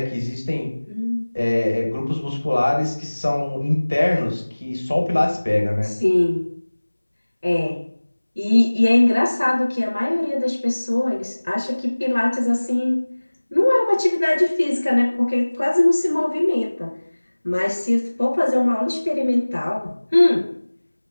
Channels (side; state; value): both; inverted; correlation -1.00